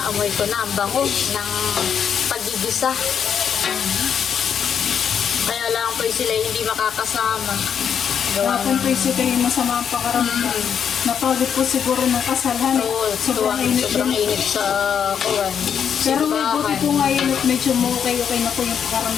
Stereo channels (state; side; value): quieter; right; 7.8 dB